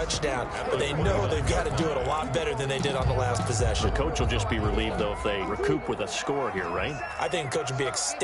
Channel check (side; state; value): both; identical; correlation 1.00